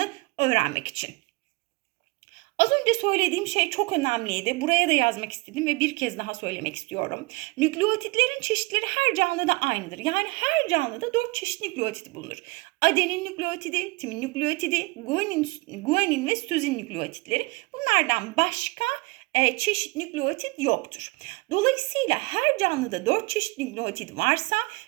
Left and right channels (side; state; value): left; quieter; 26.1 dB